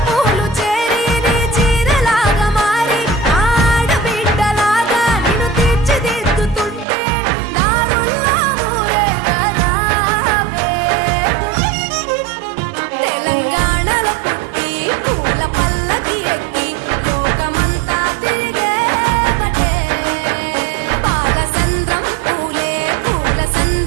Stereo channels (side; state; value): left; drops out; at 6.9 s